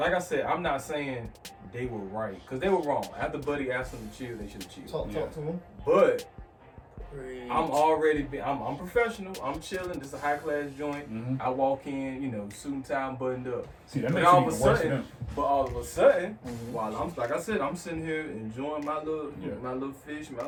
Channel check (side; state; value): both; identical; correlation 1.00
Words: said, I'm not saying they were right, because they were wrong. After Buddy asked them to chill, they should have chilled. Talk to them. But I'm professional. I'm chilling. This is a high class joint. I walk in, you know, suit and tie, buttoned up. See, that makes it even worse for them. But all of a sudden, while I'm, like I said, I'm sitting here enjoying my little fish, my